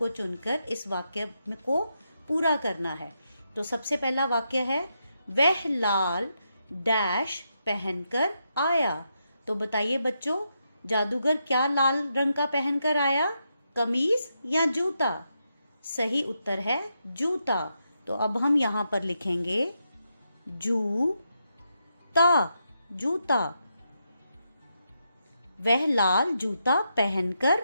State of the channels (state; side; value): inverted; both; correlation -0.83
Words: चुनकर इस वाक्य को पूरा करना है। तो सबसे पहला वाक्य है, वह लाल डैश पहनकर आया। तो बताइए बच्चों, जादूगर क्या लाल रंग का पहनकर आया? कमीज या जूता? सही उत्तर है जूता। तो अब हम यहाँ पर लिखेंगे जूता, जूता। वह लाल जूता पहनकर